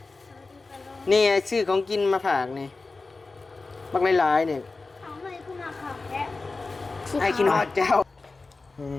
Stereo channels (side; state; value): right; quieter; 3.7 dB